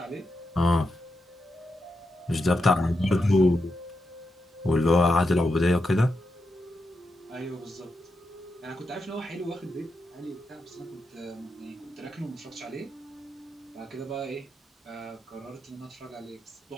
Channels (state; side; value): normal; both; correlation 0.86